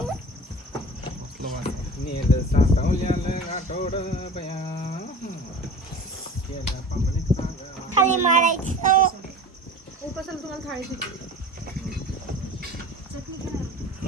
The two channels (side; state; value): both; normal; correlation 0.37